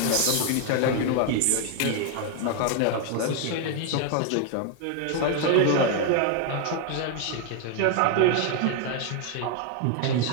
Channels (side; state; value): both; different; correlation 0.00